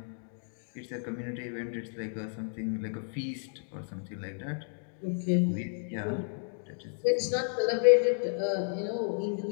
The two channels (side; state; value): right; silent; digital silence